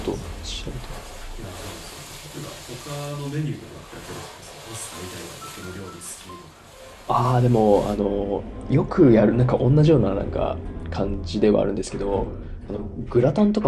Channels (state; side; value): identical; both; correlation 1.00